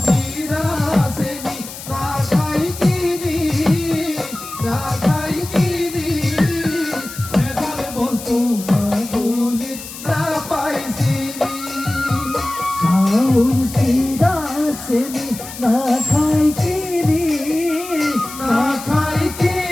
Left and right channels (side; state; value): left; noise; hiss, 12 dB below the sound